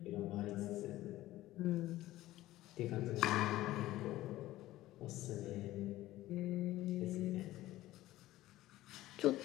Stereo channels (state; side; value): quieter; right; 15.9 dB